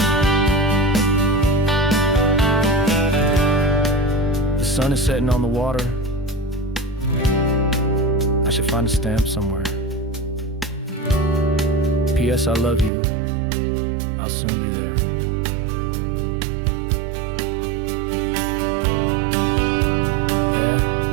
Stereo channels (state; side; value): drops out; left; at 12.9 s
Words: The sun is setting on the water. I should find a stamp somewhere. P.S. I love you. I'll soon be there. Yeah?